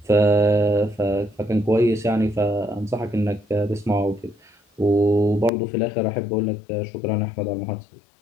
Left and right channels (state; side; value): drops out; right; at 5.5 s